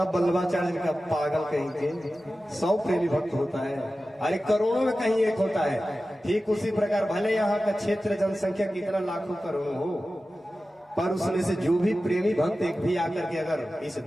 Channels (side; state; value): both; normal; correlation 0.94